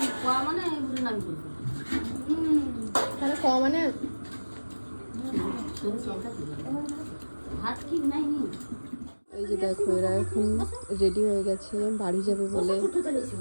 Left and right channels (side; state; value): both; inverted; correlation -1.00